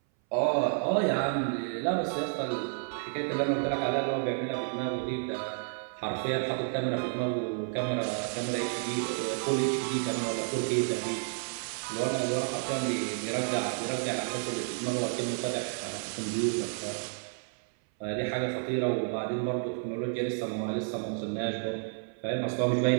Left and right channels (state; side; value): silent; left; 57 dB below the other